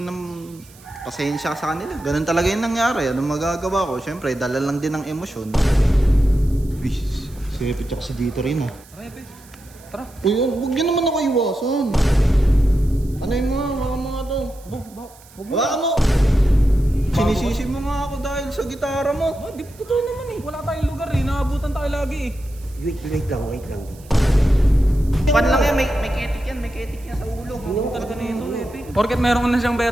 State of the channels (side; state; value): right; noise; hiss, 24 dB below the sound